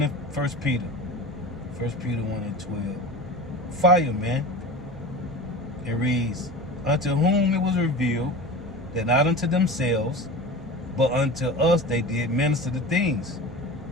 in 1 Peter. 1 Peter 1 and 12. Fire, man. It reads, unto whom it was revealed that not unto themselves, but unto us they did minister the things.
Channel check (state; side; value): normal; both; correlation 0.33